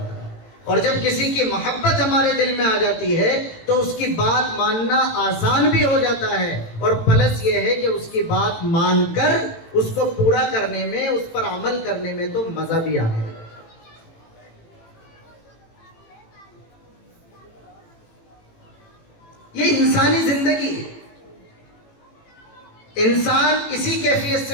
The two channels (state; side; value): late; right; 18 ms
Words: ہے، اور جب کسی کی محبت ہمارے دل میں آ جاتی ہے تو اس کی بات ماننا آسان بھی ہو جاتا ہے، اور پلس یہ ہے کہ اس کی بات مان کر اس کو پورا کرنے میں، اس پر عمل کرنے میں تو مزہ بھی آنے لگتا ہے۔ یہ انسانی زندگی ہے، انسان اسی کیفیت